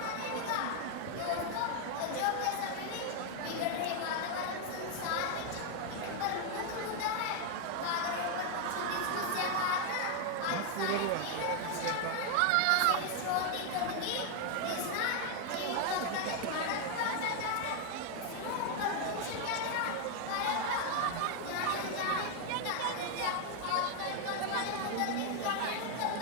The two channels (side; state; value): both; different; correlation 0.01